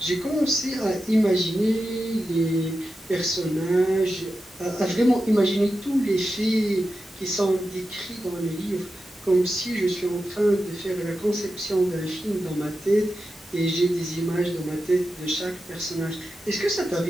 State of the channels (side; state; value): both; normal; correlation 0.91